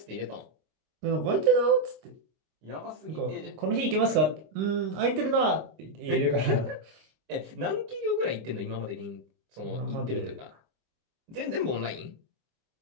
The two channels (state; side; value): late; left; 26 ms